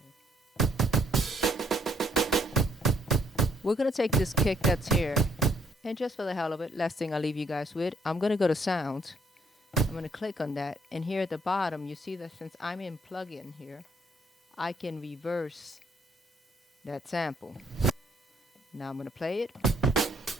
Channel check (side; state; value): both; normal; correlation 0.68